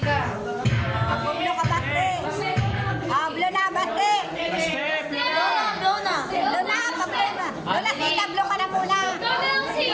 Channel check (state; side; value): identical; both; correlation 1.00